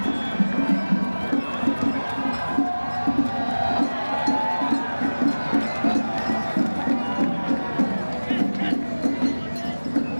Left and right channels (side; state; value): both; inverted; correlation -1.00